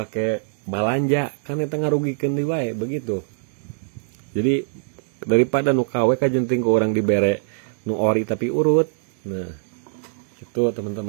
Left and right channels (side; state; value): left; silent; digital silence